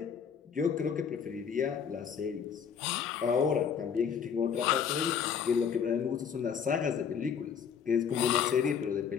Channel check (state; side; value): quieter; right; 7.2 dB